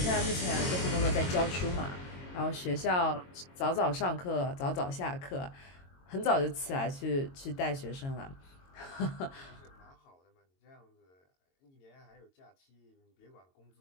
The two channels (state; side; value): late; right; 22 ms